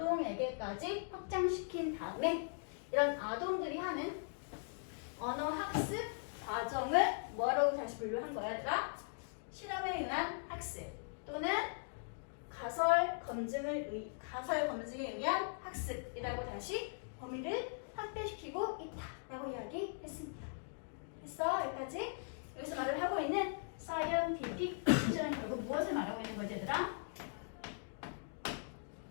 확장시킨 다음에 이런 아동들이 하는 언어 학습 과정을 뭐라고 다시 분류한 거야, 얘들아? 실험에 의한 학습 또는 가설 검증에 의한 학습이라고 다시 범위를 확대시키고 있다라고 이야기했습니다. 됐어? 여기까지? 여기서 말을 하고 있는 scientific precision은 결국 무엇을 말하고 있는 거지, 얘들아?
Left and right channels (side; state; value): right; silent; digital silence